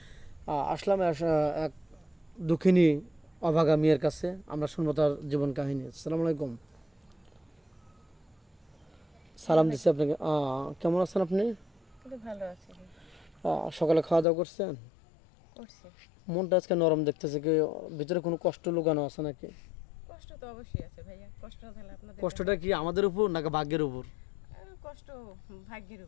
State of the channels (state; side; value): drops out; right; at 14.2 s